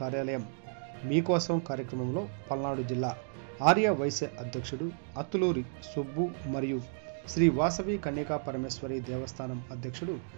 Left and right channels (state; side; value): silent; left; digital silence